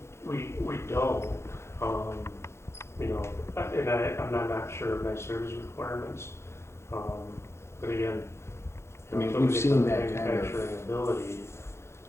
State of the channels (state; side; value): late; right; 0.13 ms